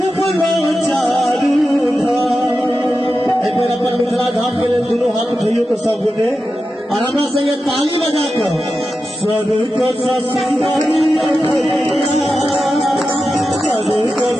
एक बेर अपन मिथिला धाम के लिए दोनों हाथ उठाइए तो सब गोटे और हमरा से ये ताली बजा कर स्वर्ग सा सुंदरिया भैया स्वर्ग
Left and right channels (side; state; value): both; normal; correlation 0.91